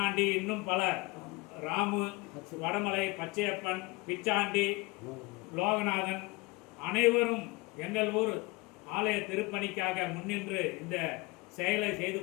இன்னும் பல ராமு, வடமலை, பச்சையப்பன், பிச்சாண்டி, லோகநாதன் அனைவரும் எங்கள் ஊர் ஆலய திருப்பணிக்காக முன்னின்று இந்த செயலை செய்து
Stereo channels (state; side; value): quieter; right; 24.2 dB